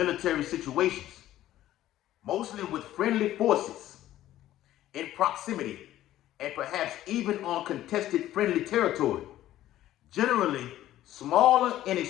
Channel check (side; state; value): right; quieter; 13.6 dB